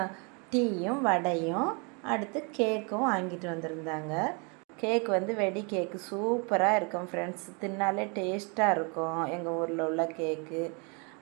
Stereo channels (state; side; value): quieter; left; 33.4 dB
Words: டீயும் வடையும் அடுத்து கேக்கும் வாங்கிட்டு வந்திருந்தாங்க. கேக் வந்து வெடி கேக்கு சூப்பராக இருக்கும் ஃப்ரெண்ட்ஸ். தின்னாலே டேஸ்ட்டாக இருக்கும் எங்கள் ஊரில் உள்ள கேக்கு.